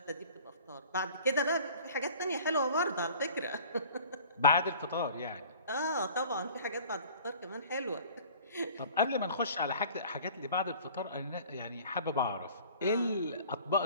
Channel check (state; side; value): inverted; both; correlation -0.48